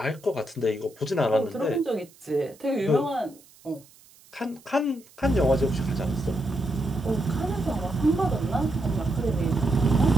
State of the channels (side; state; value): right; noise; hiss, 26 dB below the sound